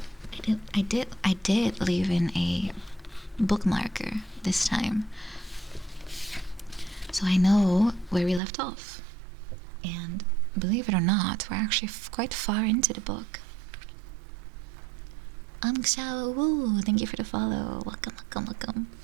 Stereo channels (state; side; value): drops out; left; at 8.4 s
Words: I did leave in a bookmarker this time, so I know where we left off. And believe it or not, we're actually quite far into the book. Xiao Wu, thank you for the follow. Welcome, welcome, welcome.